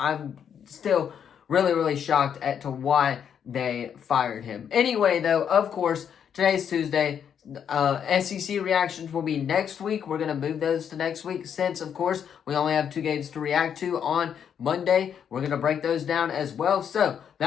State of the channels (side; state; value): right; quieter; 8.2 dB